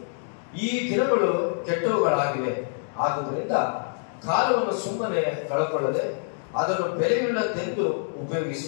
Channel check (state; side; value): silent; right; 61 dB below the other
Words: ಈ ದಿನಗಳು ಕೆಟ್ಟವುಗಳಾಗಿವೆ. ಆದುದರಿಂದ ಕಾಲವನ್ನು ಸುಮ್ಮನೆ ಕಳಕೊಳ್ಳದೆ ಅದನ್ನು ಬೆಲೆಯುಳ್ಳದ್ದೆಂದು